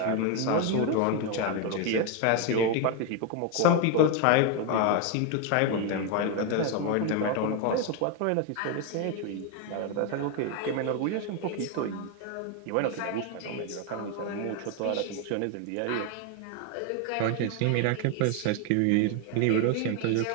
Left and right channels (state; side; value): different; both; correlation 0.01